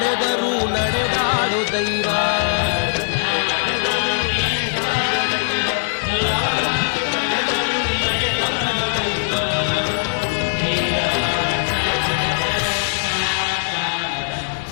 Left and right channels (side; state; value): right; silent; 66 dB below the other